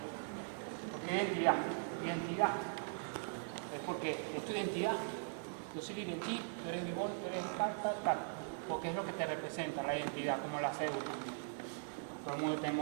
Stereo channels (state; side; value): silent; left; digital silence